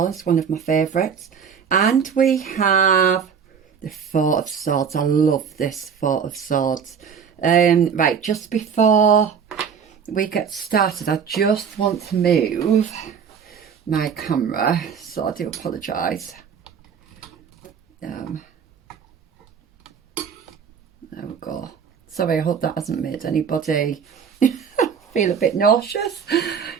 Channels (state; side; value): quieter; left; 7.0 dB